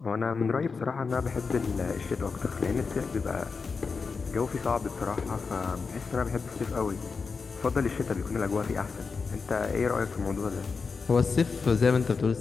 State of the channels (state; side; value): quieter; right; 4.9 dB